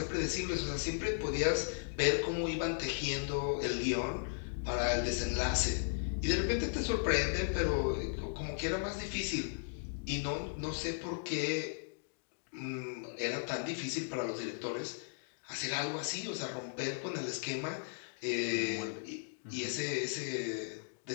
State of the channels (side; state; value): right; silent; digital silence